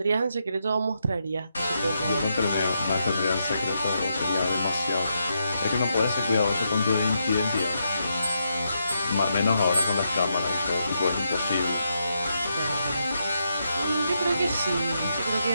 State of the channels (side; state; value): both; inverted; correlation -0.82